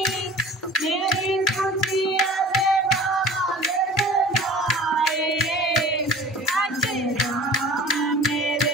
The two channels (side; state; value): both; normal; correlation 0.41